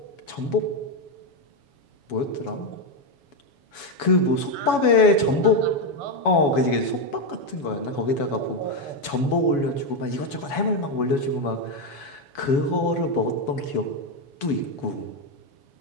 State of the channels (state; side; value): late; right; 7.1 ms